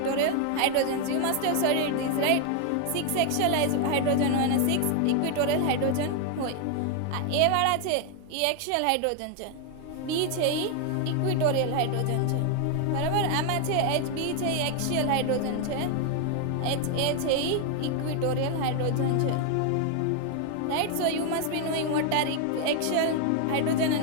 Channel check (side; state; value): both; different; correlation 0.00